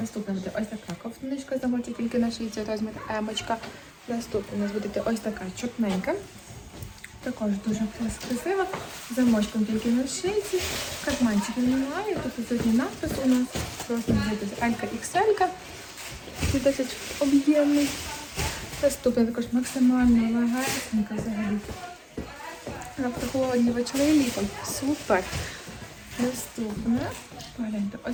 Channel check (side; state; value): both; identical; correlation 1.00